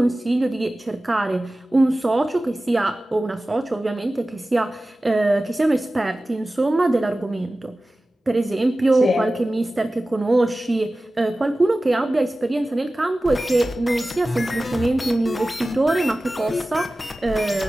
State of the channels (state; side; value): normal; both; correlation 0.96